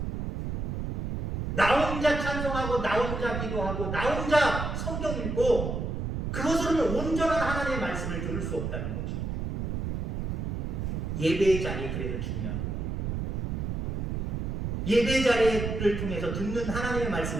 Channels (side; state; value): right; noise; rumble, 2 dB below the sound